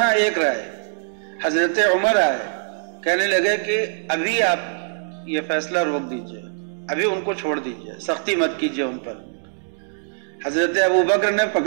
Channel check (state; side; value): silent; left; digital silence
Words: ایک رائے، حضرت عمر آئے کہنے لگے کہ ابھی آپ یہ فیصلہ روک دیجئے، ابھی ان کو چھوڑ دیجئے، سختی مت کیجئے ان پر۔ حضرت ابوبکر نے